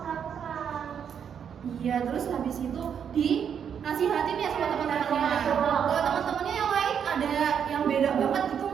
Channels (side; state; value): left; quieter; 7.9 dB